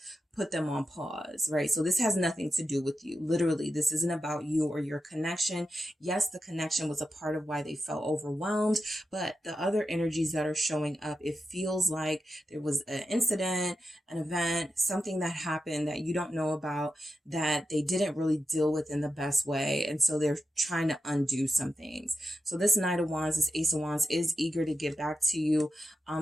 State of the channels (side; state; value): both; normal; correlation 0.89